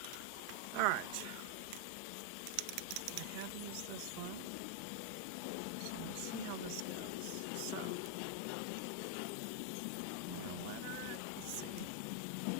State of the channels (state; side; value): different; both; correlation 0.00